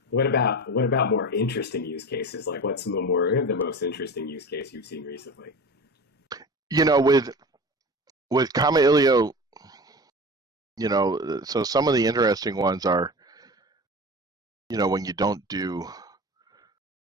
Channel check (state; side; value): normal; both; correlation 0.32